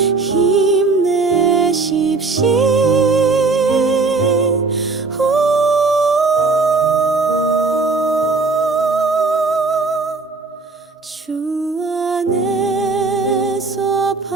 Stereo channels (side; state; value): left; quieter; 4.0 dB